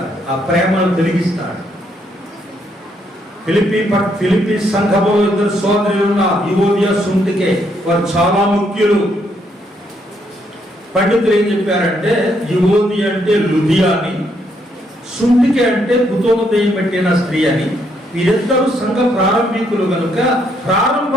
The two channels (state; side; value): normal; both; correlation 0.73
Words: ఆ ప్రేమను తొలగిస్తాడు. ఫిలిప్పీ సంఘంలో ఇద్దరు సోదరులు ఉన్న యువోదియా, సుంటికే, వారు చాలా ముఖ్యులు. పండితులు ఏం చెప్పారంటే యువోది అంటే లుదియా అని, సుంటికే అంటే కుతోమదయం పెట్టిన స్త్రీ అని. వీరిద్దరూ సంఘ ప్రారంభికులు కనుక